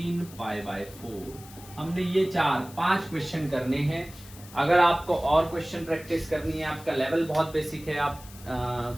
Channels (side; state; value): left; noise; hiss, 19 dB below the sound